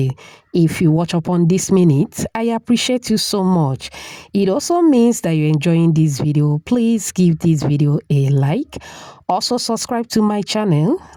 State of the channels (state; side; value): identical; both; correlation 1.00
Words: If you watch upon this minute, I appreciate you so much. It also means that you're enjoying this video. Please give this video a like. Also subscribe to my channel.